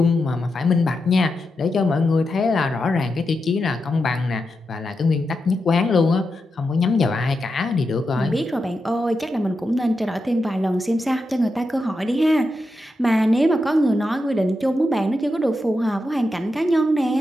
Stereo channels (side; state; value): both; normal; correlation 0.87